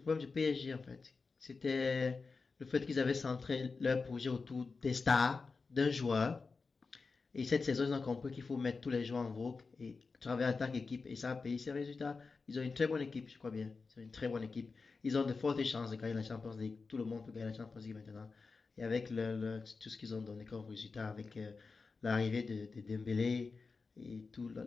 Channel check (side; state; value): right; quieter; 4.4 dB